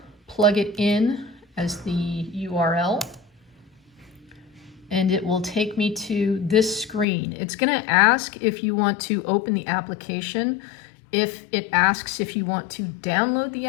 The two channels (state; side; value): drops out; right; at 7.1 s